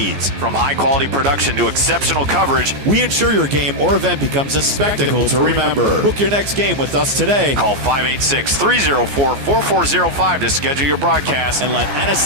From high-quality production to exceptional coverage, we ensure your game or event becomes a spectacle to remember. Book your next game with us today. Call 586-304-4405 to schedule your broadcast and let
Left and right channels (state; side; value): late; left; 14 ms